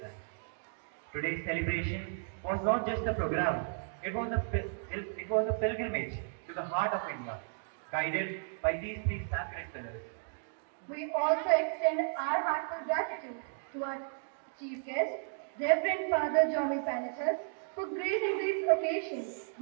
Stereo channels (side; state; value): left; silent; digital silence